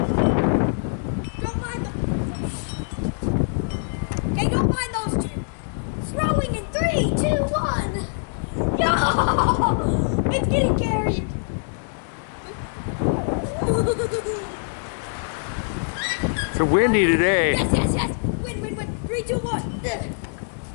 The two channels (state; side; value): silent; right; digital silence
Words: Don't mind them. Okay, don't mind those two. Throwing in 3, 2, 1. Yo! It's getting carried. It's windy today. Yes. Win. 3, 2, 1.